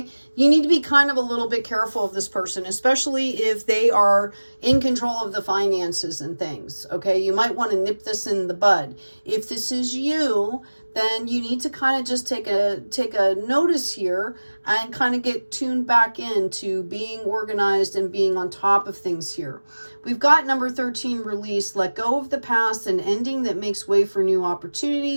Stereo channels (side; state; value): both; inverted; correlation -1.00